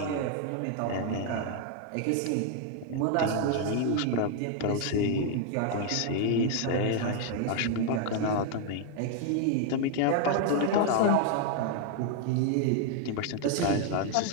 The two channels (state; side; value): different; both; correlation 0.00